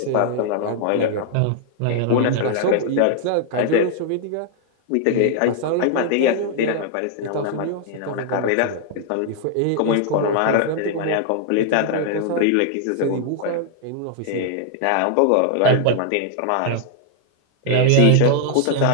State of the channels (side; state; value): both; different; correlation 0.00